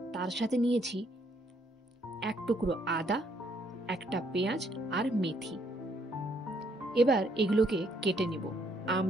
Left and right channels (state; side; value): normal; both; correlation 0.70